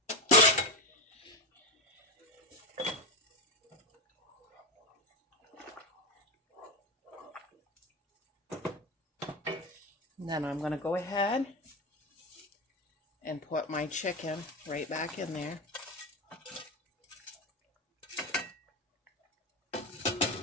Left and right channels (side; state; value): both; normal; correlation 0.13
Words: And then I'm going to go ahead and put my chicken right back in there.